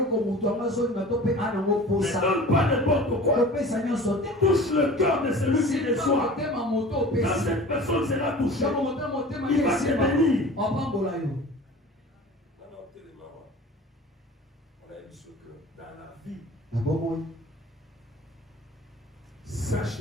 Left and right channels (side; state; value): both; normal; correlation 0.40